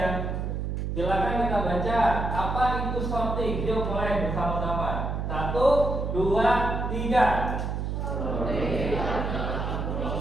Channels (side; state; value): right; noise; hum, 2 dB below the sound